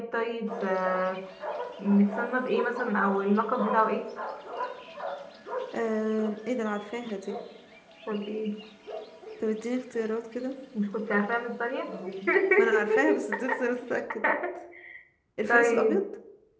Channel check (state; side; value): identical; both; correlation 1.00